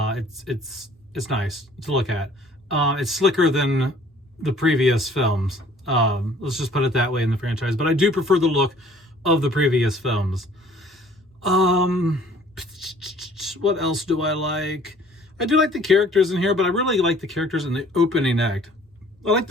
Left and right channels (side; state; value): both; normal; correlation 0.55